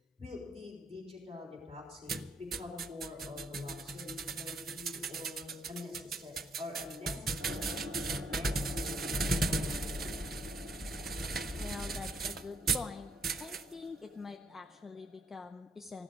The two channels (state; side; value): normal; both; correlation 0.71